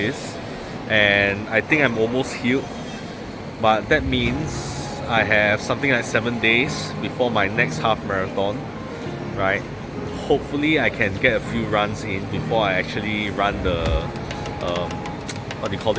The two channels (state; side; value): identical; both; correlation 1.00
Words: and I think I'm almost healed, but that means I have something like 7 days before my next half marathon, right? Hopefully I can get a few runs in before I actually run the what do you call